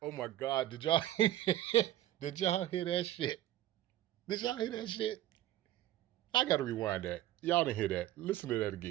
Oh my God, did y'all hear that shit? Did y'all hear that shit? I gotta rewind that. Y'all didn't hear that. Listen to that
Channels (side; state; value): left; quieter; 14.1 dB